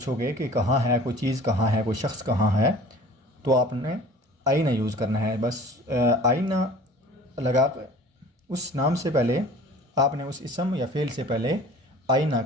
कि कहाँ है, कोई चीज़ कहाँ है, कोई शख्स कहाँ है, तो आपने आईना यूज़ करना है। बस आईना लगा कर उस नाम से पहले आपने उस इसम या फ़ेल से पहले आईना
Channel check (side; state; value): both; normal; correlation 0.46